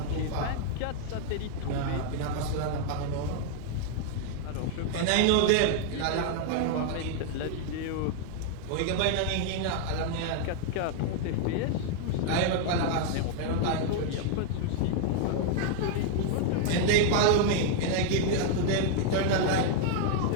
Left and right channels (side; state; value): both; different; correlation 0.00